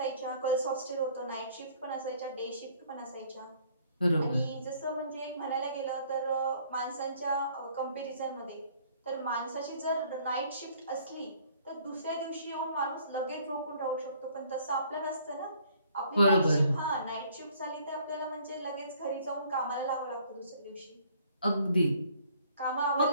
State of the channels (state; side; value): inverted; both; correlation -0.59